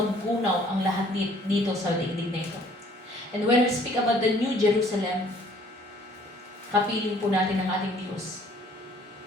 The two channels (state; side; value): normal; both; correlation 0.58